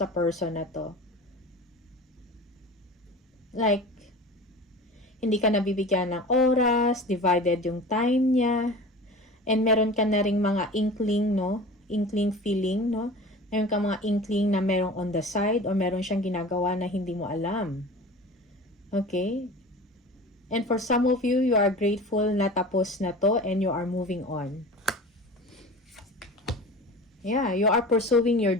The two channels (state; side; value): normal; both; correlation 0.37